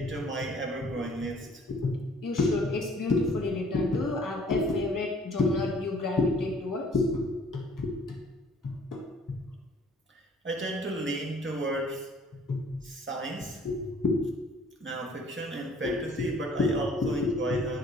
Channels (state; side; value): normal; both; correlation 0.56